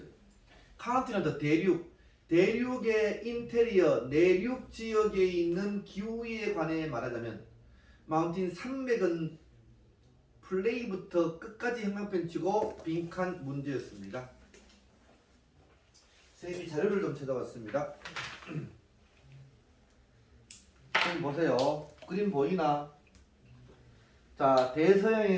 대륙의 인테리어 내륙 지역에 있는 기후에 관해 말하자면, 마운틴 산맥은 플레이부터 끝까지 형광펜 치고 빈칸 문제였습니다. 선생님이 자료를 좀 찾아봤습니다. 선생님 보세요. 그림 보이나? 자,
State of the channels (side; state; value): both; identical; correlation 1.00